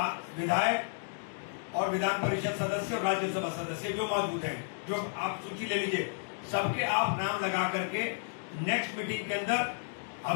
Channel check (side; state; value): right; silent; digital silence